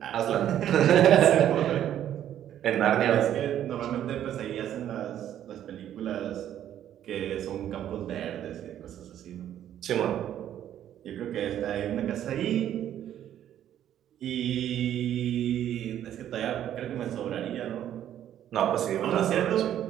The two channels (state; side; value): quieter; left; 11.0 dB